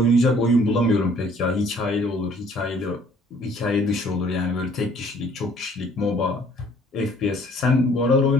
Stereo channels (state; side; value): normal; both; correlation 0.58